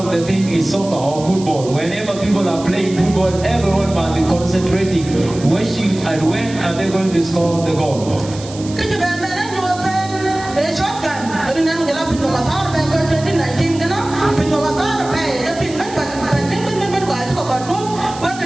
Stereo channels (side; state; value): right; noise; hiss, 16 dB below the sound